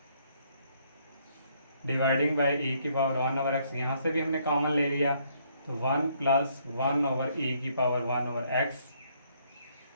डिवाइडिंग बाई e⁻1/x, यहाँ से भी हमने कॉमन ले लिया। तो 1 + 1/e⁻1/x।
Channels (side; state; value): both; inverted; correlation -0.69